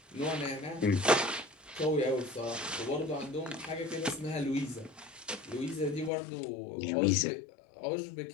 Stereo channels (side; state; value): right; drops out; at 6.1 s